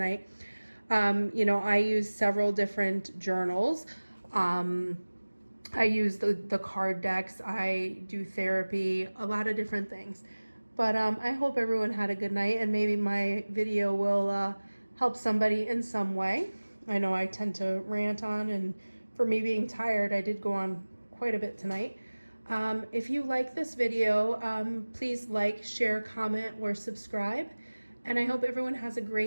I use several different journals. I use the card decks. I do therapy, a lot of different things. But I hope everyone had a good night, and maybe my video will help somebody in some way. I know I tend to rant on, and for me being tired, I did go on quite a bit tonight. If you like this video, please like, share, comment, or subscribe. And I hope everyone has a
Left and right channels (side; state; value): both; inverted; correlation -1.00